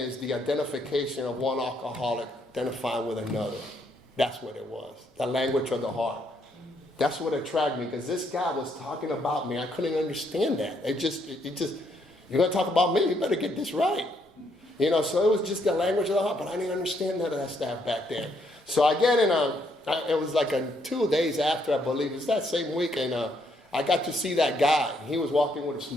the identification of one alcoholic identifying with another. That's what it was, the language of the heart. That's what attracted me, because this guy was talking about me. I couldn't understand that. It just, you're going to talk about me, you better get this right. So it was just the language of the heart, but I didn't understand none of that stuff back then. So I get in it was like 2 days after, I believe, it was that same week, and I got to see that guy. He was walking with a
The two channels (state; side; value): normal; both; correlation 0.73